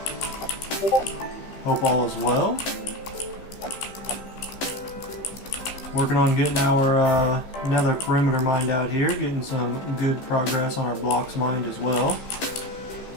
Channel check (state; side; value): late; right; 15 ms